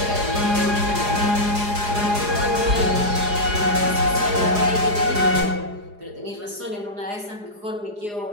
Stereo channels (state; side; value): late; left; 4.8 ms